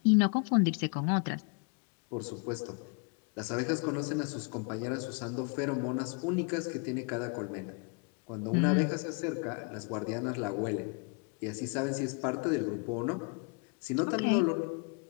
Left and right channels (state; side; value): quieter; right; 35.3 dB